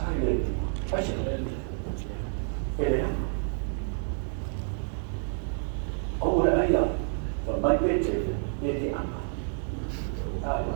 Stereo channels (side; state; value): left; silent; 59 dB below the other